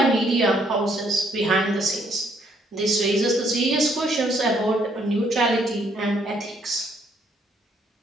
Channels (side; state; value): both; normal; correlation 0.68